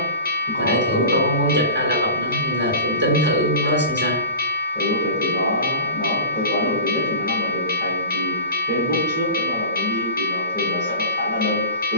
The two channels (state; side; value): inverted; both; correlation -0.34